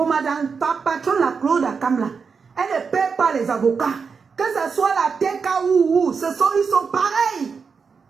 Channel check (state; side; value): quieter; left; 5.5 dB